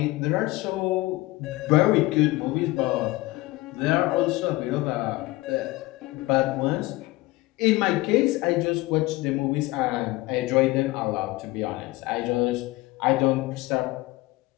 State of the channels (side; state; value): right; quieter; 20.3 dB